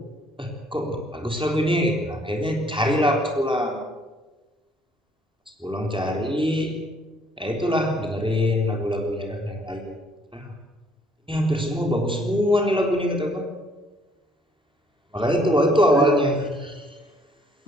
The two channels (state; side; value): normal; both; correlation 0.64